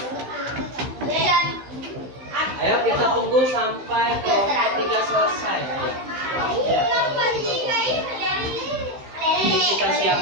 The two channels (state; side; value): late; left; 15 ms